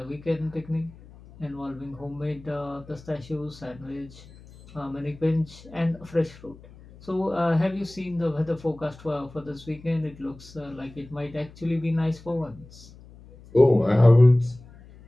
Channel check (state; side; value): noise; left; hum, 21 dB below the sound